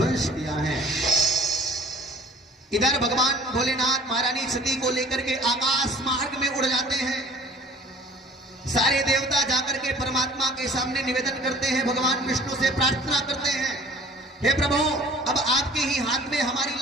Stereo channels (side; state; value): both; normal; correlation 0.48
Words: किया है। इधर भगवान भोलेनाथ महारानी सती को लेकर के आकाश मार्ग में उड़ जाते हैं। सारे देवता जाकर के परमात्मा के सामने निवेदन करते हैं, भगवान विष्णु से प्रार्थना करते हैं, हे प्रभु अब आपके ही हाथ में हमारी